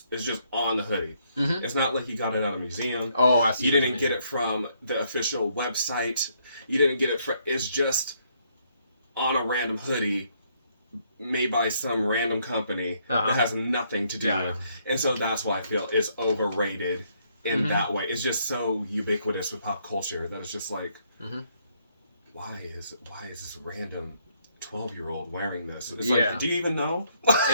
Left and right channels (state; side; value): inverted; both; correlation -0.71